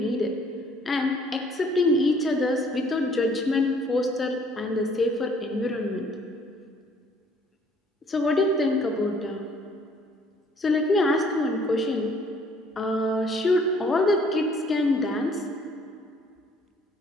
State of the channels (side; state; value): both; normal; correlation 0.60